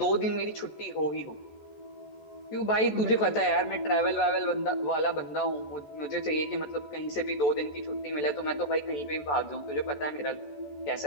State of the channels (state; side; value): late; right; 14 ms